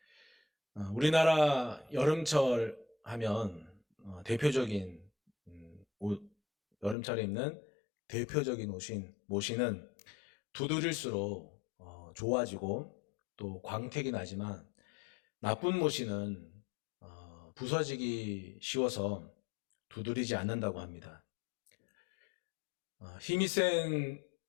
우리나라 여름철 하면 대표적인 여름철에 입는 대표적인 모시는 두드릴수록 좋아지고 또 광택이 나지만 나쁜 모시는 부서지기 쉬워서 두드리지 않는다고 합니다. 힘이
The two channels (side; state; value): right; drops out; at 7.0 s